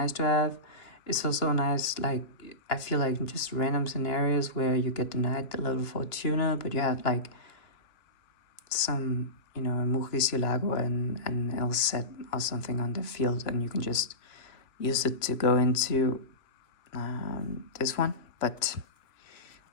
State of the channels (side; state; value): right; late; 3.0 ms